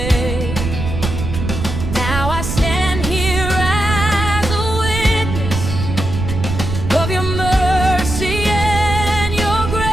Now I stand here as a witness of your mercy and your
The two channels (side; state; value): right; noise; rumble, 4 dB below the sound